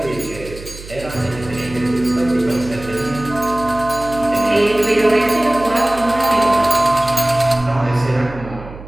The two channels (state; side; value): noise; right; hum, 15 dB below the sound